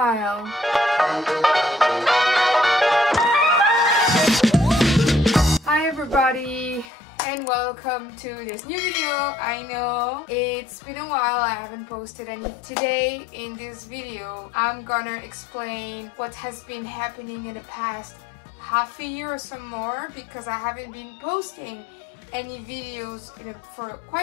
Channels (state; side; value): drops out; right; at 6.9 s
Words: Hi everybody and welcome to this new video. I know it's been a while, I haven't posted any. Today in this video I'm gonna explain what has been happening in the past half a year or some more, because I haven't been posting any videos for